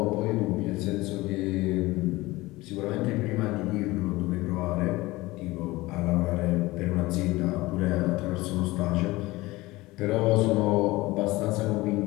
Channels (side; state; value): right; quieter; 20.1 dB